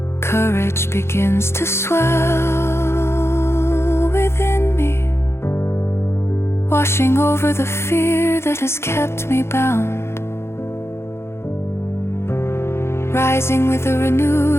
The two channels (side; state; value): right; late; 0.12 ms